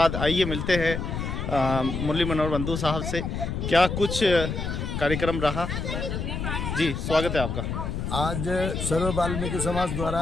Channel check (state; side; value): noise; left; rumble, 3 dB below the sound